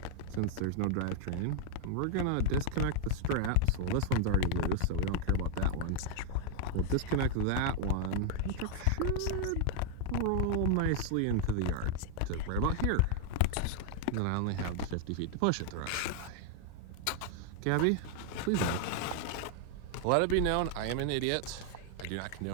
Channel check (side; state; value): both; different; correlation 0.00